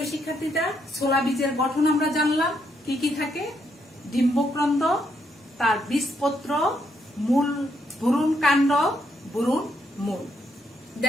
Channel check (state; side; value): normal; both; correlation 0.76